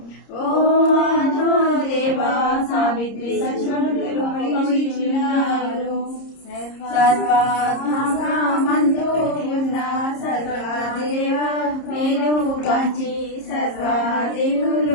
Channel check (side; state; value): right; late; 30 ms